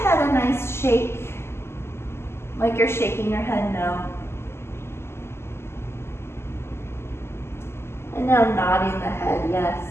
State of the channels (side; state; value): right; late; 0.12 ms